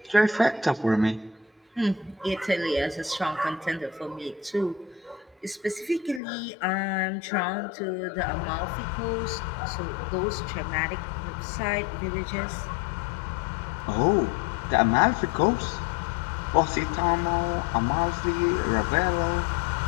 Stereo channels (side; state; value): right; drops out; at 6.2 s